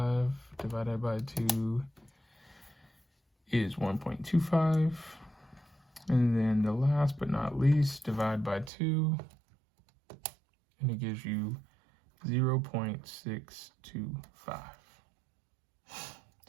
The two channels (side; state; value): left; drops out; at 8.7 s